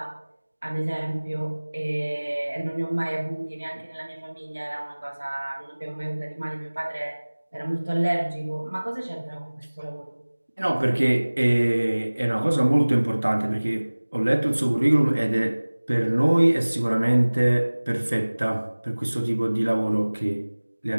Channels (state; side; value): inverted; both; correlation -1.00